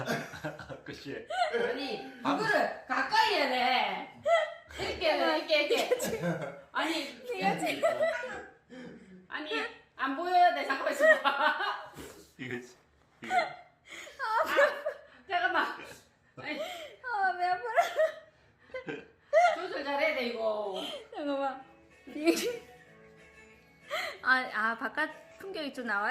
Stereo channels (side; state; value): both; identical; correlation 1.00